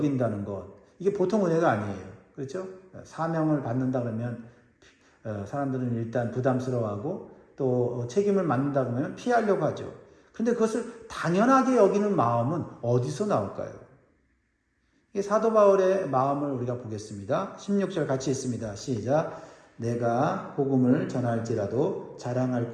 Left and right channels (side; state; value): both; identical; correlation 1.00